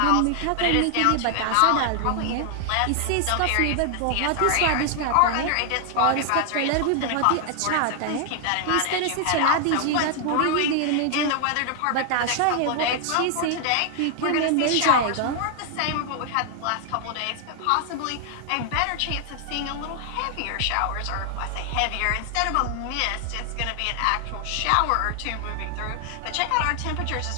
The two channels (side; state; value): both; different; correlation 0.00